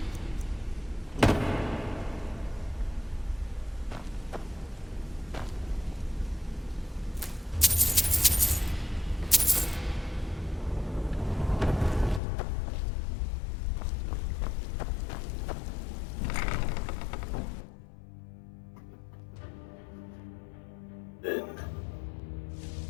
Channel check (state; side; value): drops out; right; at 12.2 s